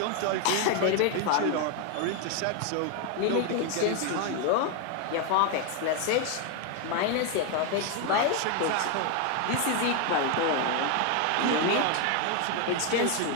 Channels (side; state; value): both; different; correlation 0.01